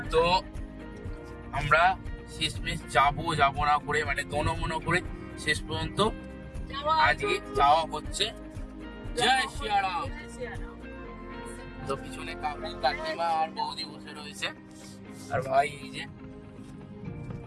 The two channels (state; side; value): identical; both; correlation 1.00